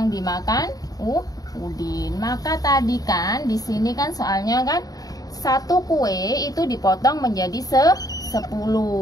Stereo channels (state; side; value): late; right; 0.18 ms